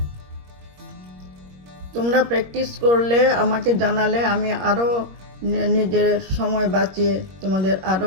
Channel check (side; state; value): left; late; 21 ms